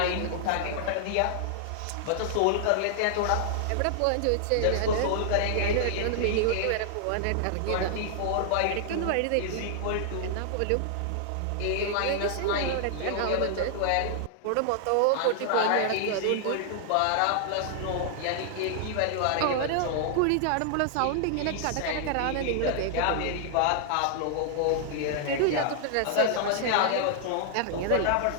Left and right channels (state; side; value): different; both; correlation -0.01